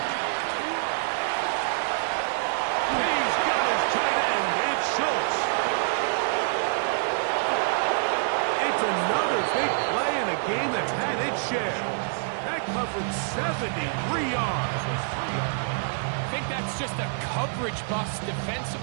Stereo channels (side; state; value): left; silent; digital silence